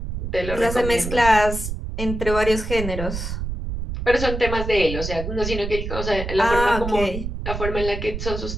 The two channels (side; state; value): right; noise; rumble, 5 dB below the sound